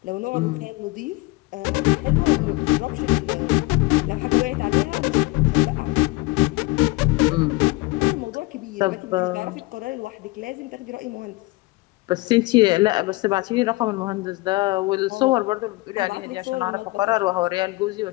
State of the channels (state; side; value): quieter; right; 22.5 dB